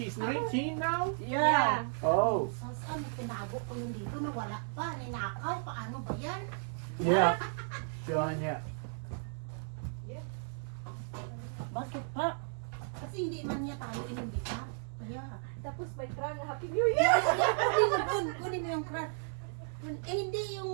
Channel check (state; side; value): silent; left; 55 dB below the other